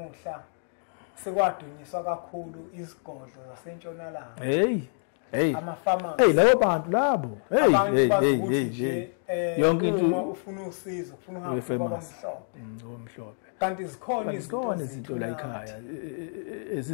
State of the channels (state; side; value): silent; right; 60 dB below the other